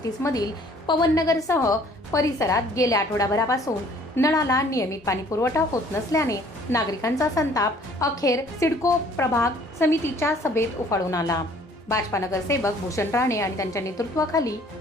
मधील पवननगरसह परिसरात गेल्या आठवडाभरापासून नळाला नियमित पाणी पुरवठा होत नसल्याने नागरिकांचा संताप अखेर सिडको प्रभाग समितीच्या सभेत उफाळून आला। भाजपा नगरसेवक भूषण राणे आणि त्यांच्या नेतृत्वाखाली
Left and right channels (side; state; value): both; normal; correlation 0.56